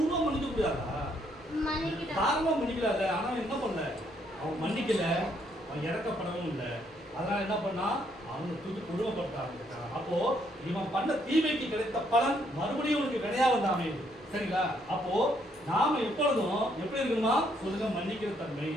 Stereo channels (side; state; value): both; normal; correlation 0.71